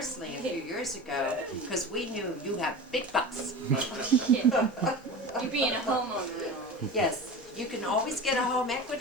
a few years ago, because we knew you have big bucks. Yeah. You being a homeowner and all. Yes, you can always get a home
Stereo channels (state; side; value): normal; both; correlation 0.32